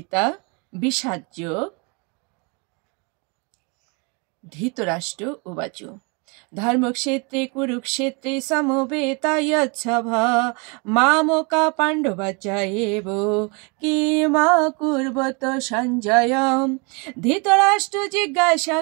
বিষাদ যোগ। ধৃতরাষ্ট্র উবাচ ধর্মক্ষেত্রে কুরুক্ষেত্রে সমবেতায়চ্ছভা মামকা পাণ্ডবাচায়েব কিমাকুর্বত সঞ্জয়। ধৃতরাষ্ট্র জিজ্ঞাসা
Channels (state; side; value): quieter; left; 31.8 dB